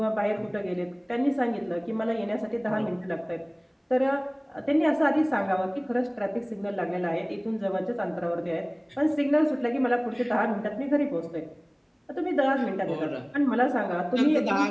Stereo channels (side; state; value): both; identical; correlation 1.00